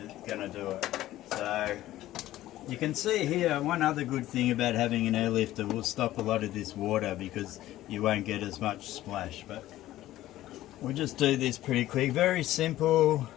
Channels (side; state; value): right; quieter; 14.8 dB